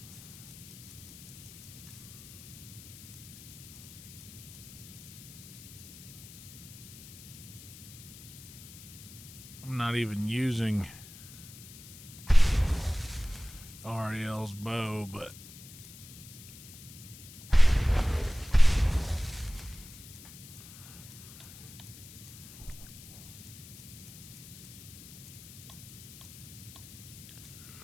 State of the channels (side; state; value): left; noise; hiss, 16 dB below the sound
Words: I'm not even using Ariel's bow, but